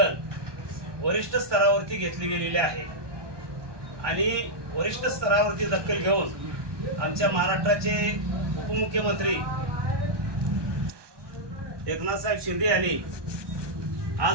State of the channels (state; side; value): late; left; 1.2 ms